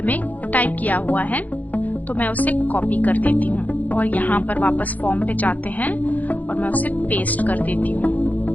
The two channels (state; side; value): late; right; 0.080 ms